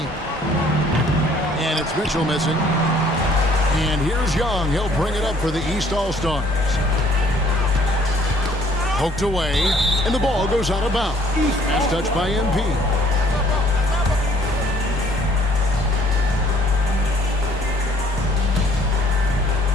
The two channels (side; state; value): both; normal; correlation 0.60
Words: And it's Mitchell missing. And here's Young. He'll bring it up for the East All-Stars. Poked away, and the ball goes out of bounds. Pass touched by MP.